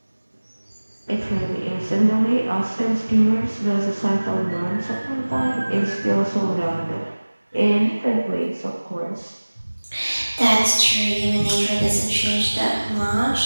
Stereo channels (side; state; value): both; inverted; correlation -1.00